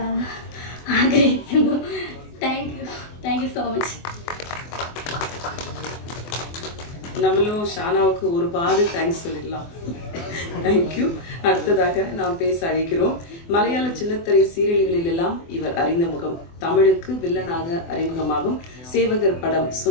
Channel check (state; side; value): late; right; 24 ms